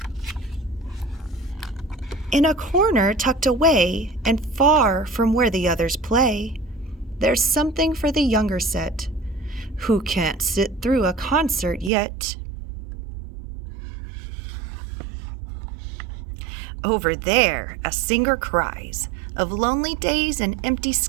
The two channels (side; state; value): left; drops out; at 11.9 s